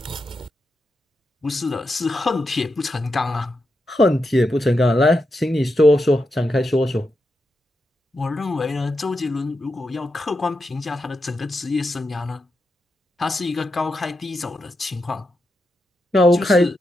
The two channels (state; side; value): normal; both; correlation 0.86